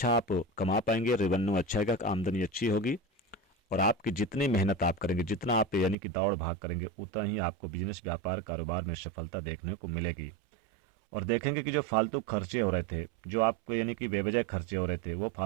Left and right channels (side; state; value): left; drops out; at 6.0 s